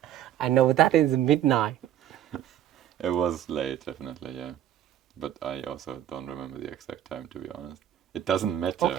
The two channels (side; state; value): left; quieter; 11.2 dB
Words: I know that is midnight. It was late, definitely, yeah. But I also don't remember the exact time, to be honest. It doesn't matter.